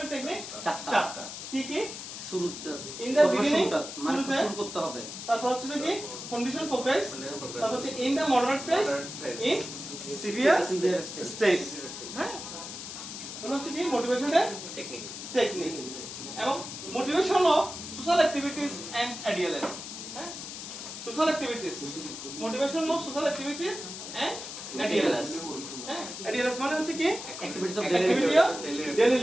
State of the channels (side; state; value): left; noise; hiss, 9 dB below the sound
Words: টেকনিক চারটা। কি কি? শুরুতে ইন দা বিগিনিং মানে শুরু করতে হবে, তারপর হচ্ছে যে কি কন্ডিশন প্রোগ্রেস, তারপর হচ্ছে in the moderate phase, in severe stage, হ্যাঁ? এগুলো হচ্ছে কি মোটিভেশনের টেকনিক। এবং motivation of social activities and ADLs, হ্যাঁ? Social activities, motivation of social activities and ADLs, হ্যাঁ? এডিএলএস মানে হচ্ছে কি অ্যাক্টিভিটিস অফ ডেইলি